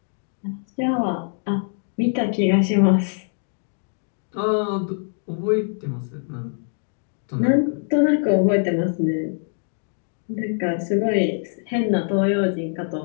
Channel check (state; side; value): silent; right; digital silence